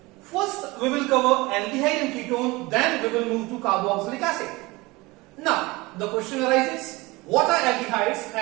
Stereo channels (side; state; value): left; quieter; 22.5 dB